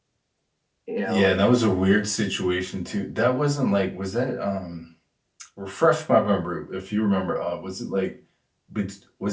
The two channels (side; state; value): both; identical; correlation 1.00